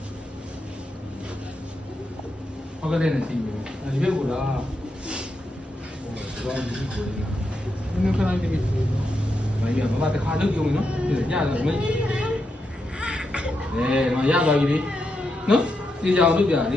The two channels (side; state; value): both; normal; correlation 0.84